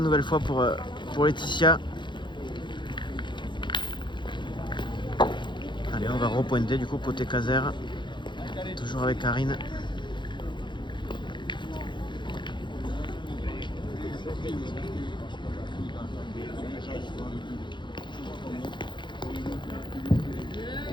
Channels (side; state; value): right; late; 0.23 ms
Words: nouvelle fois pour Laetitia. repointé du coup côté Caser. Toujours avec Karine.